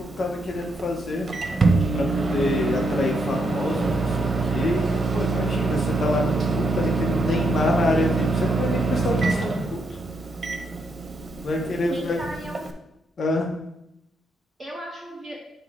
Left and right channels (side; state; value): both; normal; correlation 0.78